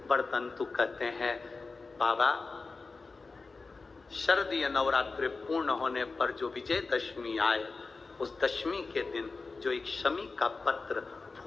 बरतंतु कहते हैं, बाबा शरदीय नवरात्रि पूर्ण होने पर जो विजयदशमी आए, उस दशमी के दिन जो एक शमी का पत्र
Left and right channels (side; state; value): right; quieter; 4.0 dB